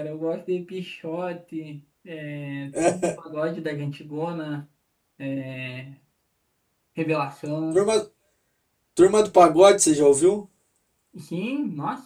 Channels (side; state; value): both; identical; correlation 1.00